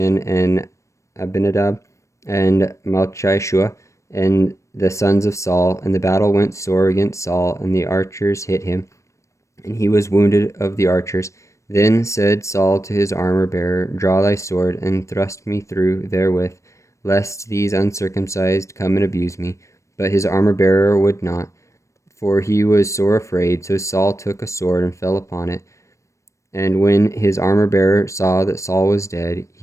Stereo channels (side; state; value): right; late; 0.15 ms